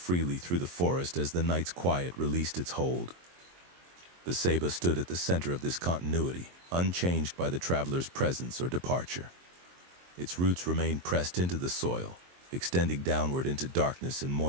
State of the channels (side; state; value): left; late; 23 ms